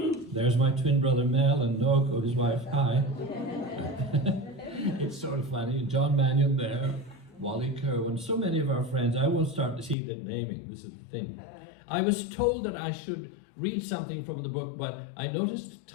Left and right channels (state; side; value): drops out; right; at 10.0 s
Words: there's my twin brother Mel and Noako, his wife. Hi. It's sort of funny. John Mannion there, Wally Kerwin, so many of our friends. I won't start to see the naming. This is the thing. I was told that I should read something from the book, but I noticed